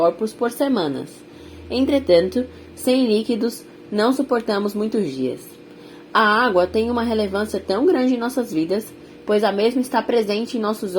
por semanas. Entretanto, sem líquidos, não suportamos muitos dias. A água tem uma relevância tão grande em nossas vidas, pois a mesma está presente em nossos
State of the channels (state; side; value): identical; both; correlation 1.00